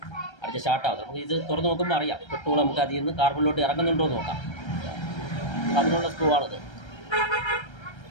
അടിച്ച് സ്റ്റാർട്ടാകും. നമുക്ക് ഇത് തുറന്ന് നോക്കുമ്പോൾ അറിയാം പെട്രോൾ നമുക്ക് അതിൽ നിന്ന് കാർബണിലോട്ട് ഇറങ്ങുന്നുണ്ടോ എന്ന് നോക്കാം. അതിനുള്ള സ്ക്രൂ ആണിത്.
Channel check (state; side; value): late; right; 1.3 ms